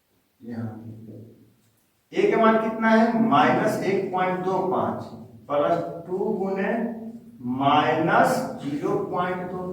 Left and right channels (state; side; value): identical; both; correlation 1.00